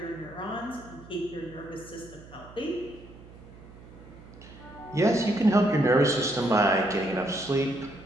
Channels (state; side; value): noise; right; hum, 19 dB below the sound